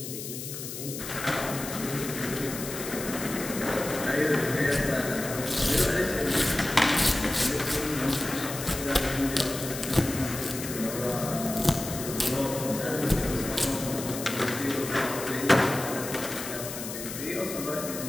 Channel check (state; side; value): noise; left; hiss, 8 dB below the sound